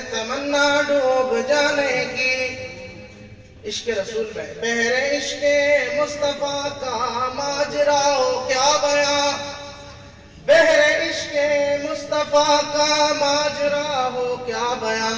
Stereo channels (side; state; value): both; identical; correlation 1.00